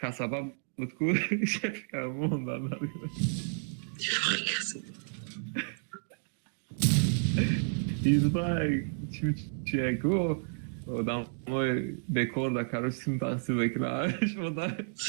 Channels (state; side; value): silent; left; digital silence